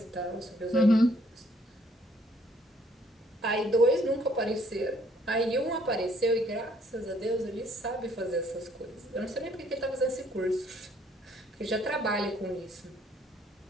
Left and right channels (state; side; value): normal; both; correlation 0.64